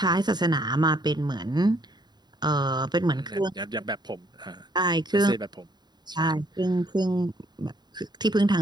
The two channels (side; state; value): left; late; 0.20 ms